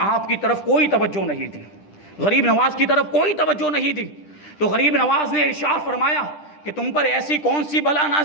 کی طرف کوئی توجہ نہیں دی, غریب نواز کی طرف کوئی توجہ نہیں دی. تو غریب نواز نے ارشاد فرمایا کہ تم پر ایسی کون سی بلا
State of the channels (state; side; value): late; right; 10 ms